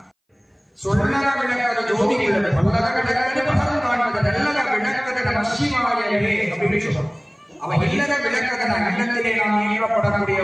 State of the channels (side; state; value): both; identical; correlation 1.00